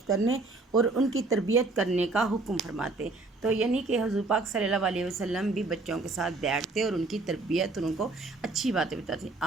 کرنے اور ان کی تربیت کرنے کا حکم فرماتے۔ تو یعنی کہ حضور پاک صلی اللہ علیہ وسلم بھی بچوں کے ساتھ بیٹھتے اور ان کی تربیت اور ان کو اچھی باتیں بتاتے۔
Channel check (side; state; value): left; quieter; 3.4 dB